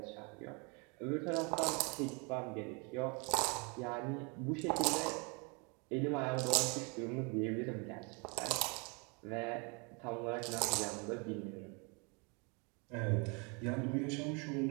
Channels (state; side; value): quieter; left; 32.4 dB